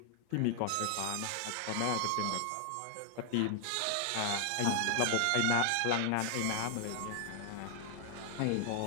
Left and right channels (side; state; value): both; different; correlation 0.00